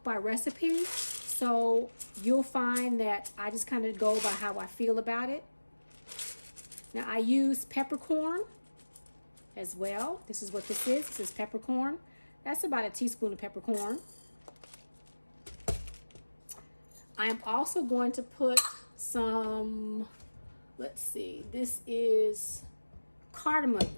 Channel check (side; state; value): both; inverted; correlation -1.00